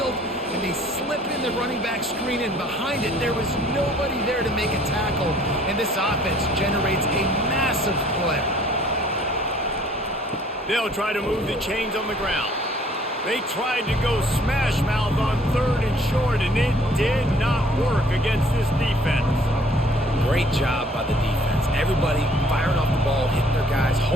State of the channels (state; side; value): normal; both; correlation 0.57